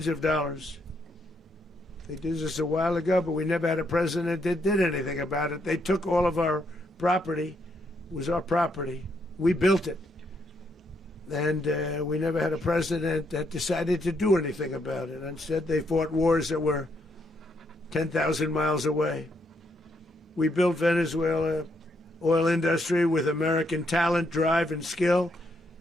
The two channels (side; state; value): both; normal; correlation 0.76